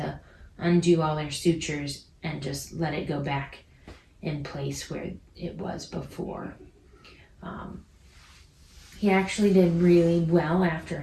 undo all their sutures and just let it go back in place where it was before. He actually did really well after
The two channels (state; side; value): identical; both; correlation 1.00